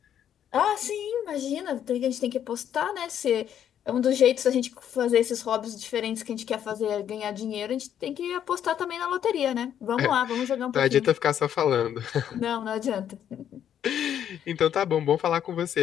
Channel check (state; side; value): quieter; right; 9.7 dB